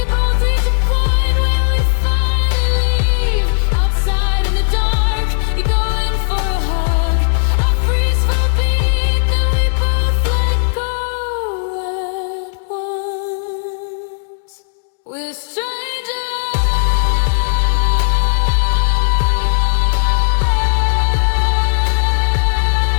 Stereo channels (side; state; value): right; silent; digital silence